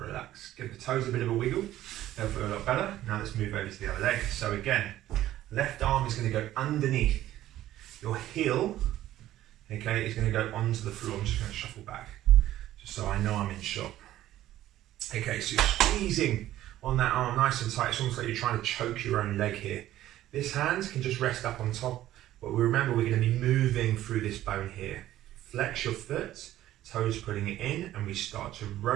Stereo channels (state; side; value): quieter; left; 13.8 dB